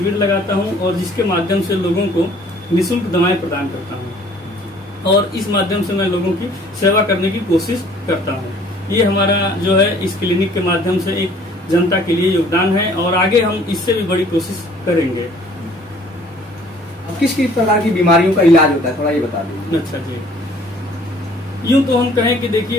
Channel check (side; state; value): both; normal; correlation 0.55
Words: लगाता हूं और जिसके माध्यम से लोगों को निःशुल्क दवाएं प्रदान करता हूं और इस माध्यम से मैं लोगों की सेवा करने की कोशिश करता हूं। ये हमारा जो है इस क्लिनिक के माध्यम से एक जनता के लिए योगदान है और आगे हम इससे भी बड़ी कोशिश करेंगे। अब किस किस प्रकार की बीमारियों का इलाज होता है, थोड़ा ये बता दीजिए। अच्छा जी, यूं तो हम कहें कि